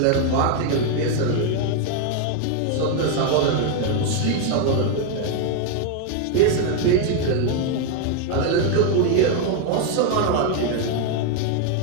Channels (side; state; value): both; different; correlation 0.01